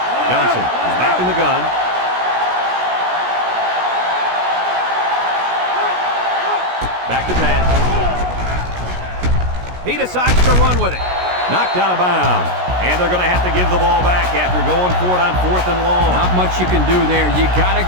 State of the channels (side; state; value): left; late; 16 ms